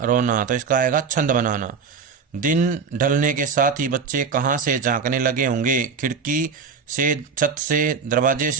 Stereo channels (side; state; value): left; quieter; 5.7 dB